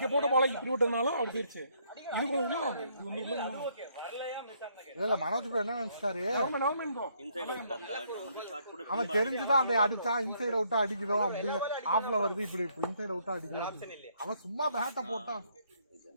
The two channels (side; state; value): both; inverted; correlation -0.69